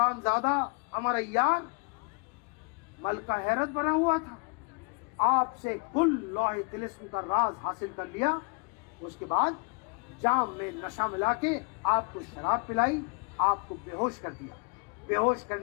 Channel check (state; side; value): quieter; right; 34.7 dB